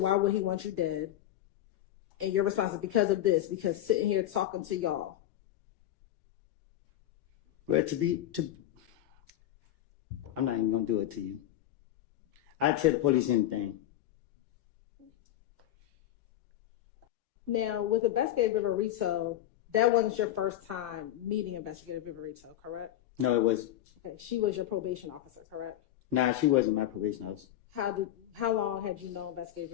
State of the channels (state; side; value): quieter; right; 13.0 dB